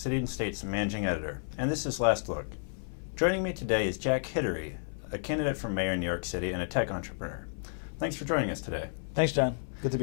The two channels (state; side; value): silent; right; 57 dB below the other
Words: and State's Managing Editor, and this is Last Look. Joining me today is Jack Hidary, a candidate for mayor in New York City and a tech entrepreneur. Thanks for joining us today. Thanks, John. Good to be